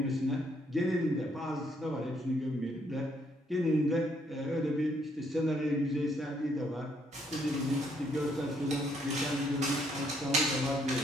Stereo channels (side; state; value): both; normal; correlation 0.70